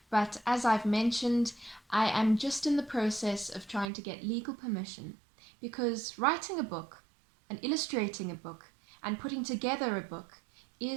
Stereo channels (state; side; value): drops out; left; at 3.9 s